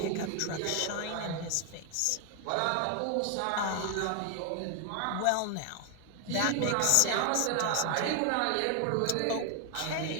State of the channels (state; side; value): different; both; correlation 0.00